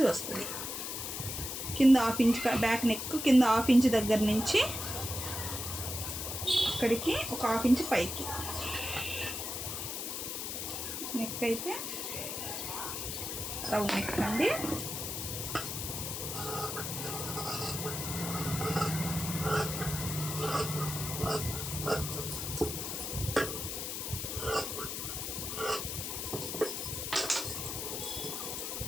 వస్తుంది. కింద 1/2 ఇంచ్ బ్యాక్ నెక్ కింద 1/2 ఇంచ్ దగ్గర నుంచి ఇక్కడికి ఒక 1/2 ఇంచ్ పైకి నెక్ అయితే రౌండ్ నెక్ అండి.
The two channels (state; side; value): noise; left; hiss, 4 dB below the sound